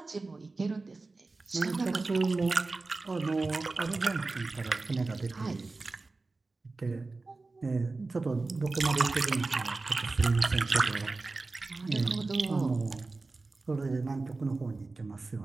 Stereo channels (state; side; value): quieter; left; 3.6 dB